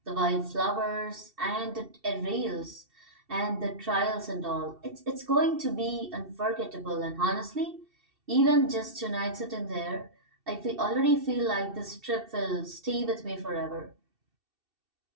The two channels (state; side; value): late; left; 2.7 ms